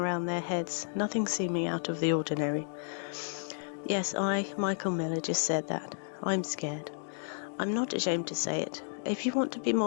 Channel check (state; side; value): silent; right; digital silence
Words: their heads, nothing seeming out of the ordinary. Yes, I, Michael Miller, just said that. I'm scared. I'm not ashamed to say it. If you want to be